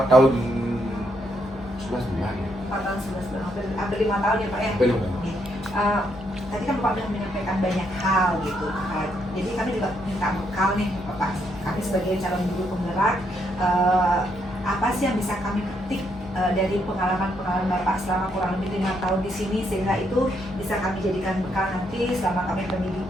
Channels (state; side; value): normal; both; correlation 0.76